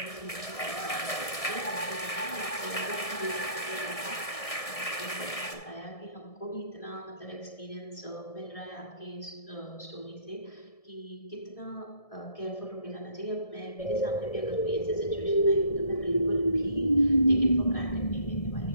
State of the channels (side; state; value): right; late; 1.7 ms